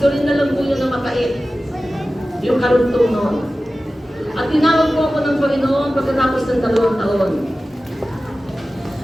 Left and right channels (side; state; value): both; normal; correlation 0.95